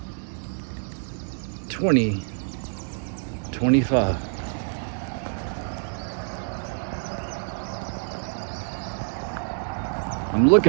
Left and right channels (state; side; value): silent; left; 61 dB below the other